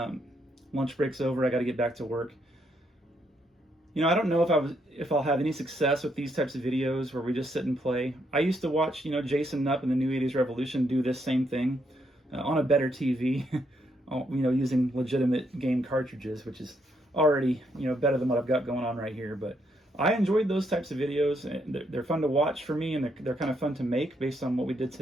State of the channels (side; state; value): both; normal; correlation 0.75